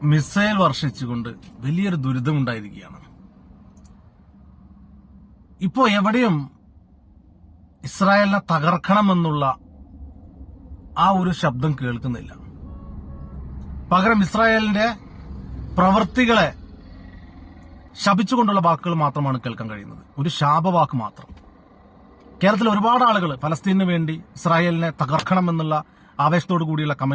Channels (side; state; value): both; identical; correlation 1.00